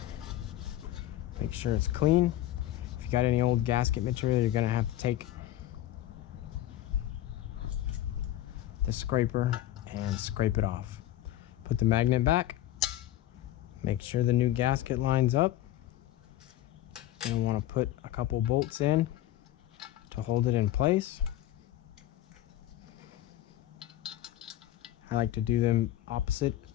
Make sure it's clean. If you got any old gasket material, you're gonna have to take the scraper and scrape it off. Put the magnet back. Make sure the new gasket lines up. You'll want to put a couple bolts in to hold it in place. I like to do them opposite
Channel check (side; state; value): right; quieter; 13.6 dB